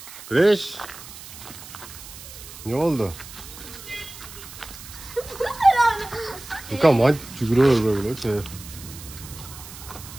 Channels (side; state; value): right; noise; hiss, 15 dB below the sound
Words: Güneş. Ne oldu? Yıkam hadi çükürüyor böyle şey.